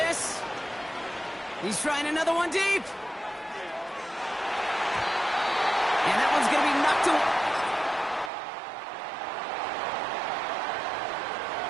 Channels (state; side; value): drops out; left; at 8.3 s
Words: He's trying another one deep. And that one's going to be knocked away.